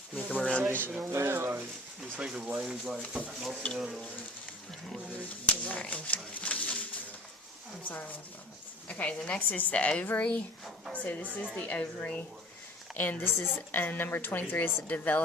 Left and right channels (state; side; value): normal; both; correlation 0.45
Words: me come around you. Yeah, like, just think of lanes like most of the other ones. Right. I'm sorry. Okay, the next is the ovary. So this is the ovary. And this is number 23 is the